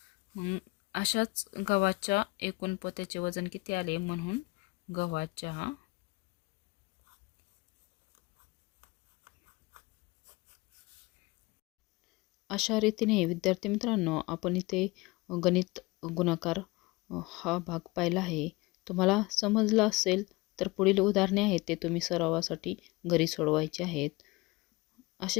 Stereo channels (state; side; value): quieter; right; 23.1 dB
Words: मग अशाच गव्हाच्या एकूण पोत्याचे वजन किती आले? म्हणून गव्हाच्या अशा रीतीने विद्यार्थी मित्रांनो आपण इथे गणित गुणाकार हा भाग पाहिला आहे. तुम्हाला समजला असेल तर पुढील उदाहरणे आहेत ते तुम्ही सरावासाठी घरी सोडवायचे आहेत. असे